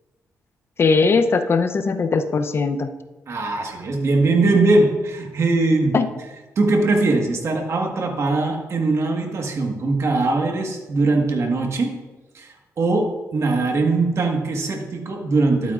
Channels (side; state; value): both; normal; correlation 0.79